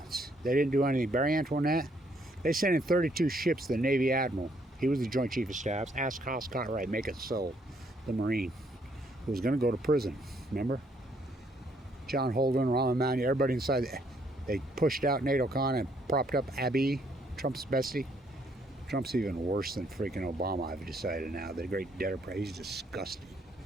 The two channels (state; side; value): normal; both; correlation 0.69